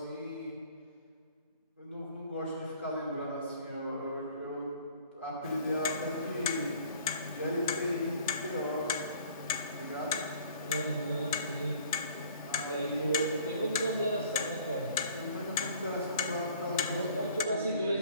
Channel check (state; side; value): inverted; both; correlation -0.53